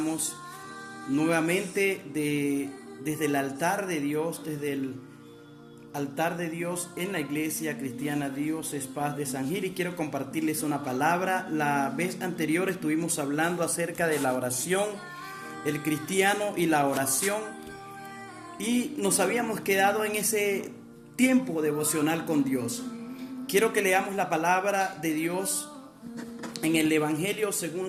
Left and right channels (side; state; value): both; identical; correlation 1.00